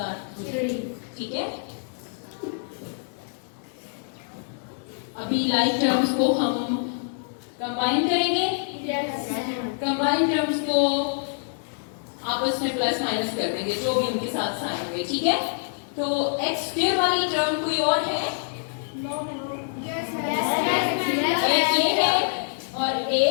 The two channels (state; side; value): silent; right; digital silence